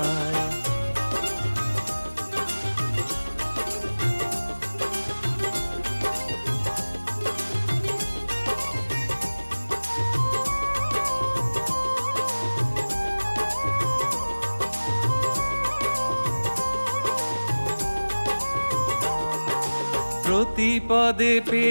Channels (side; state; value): both; inverted; correlation -1.00